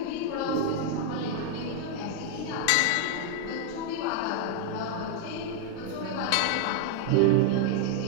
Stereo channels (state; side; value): different; both; correlation 0.00